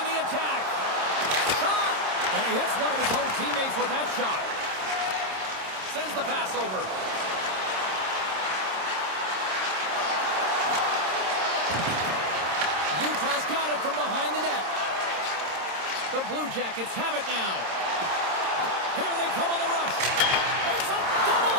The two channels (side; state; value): left; late; 26 ms